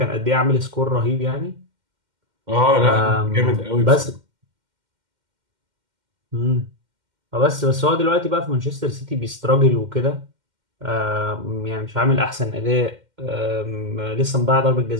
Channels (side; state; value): left; late; 2.1 ms